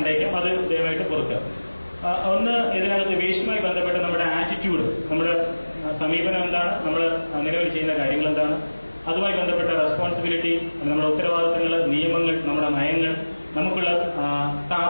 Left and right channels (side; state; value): both; inverted; correlation -1.00